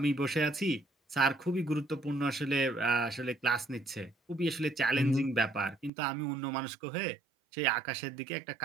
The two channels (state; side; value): drops out; left; at 5.9 s